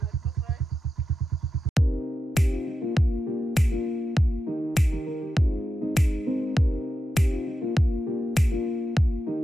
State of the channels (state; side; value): normal; both; correlation 0.89